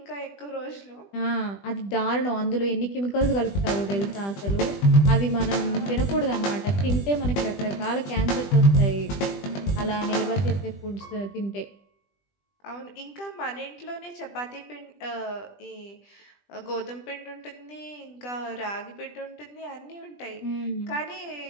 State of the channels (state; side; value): late; right; 20 ms